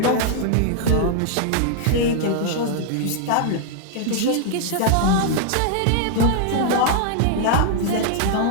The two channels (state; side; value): different; both; correlation 0.00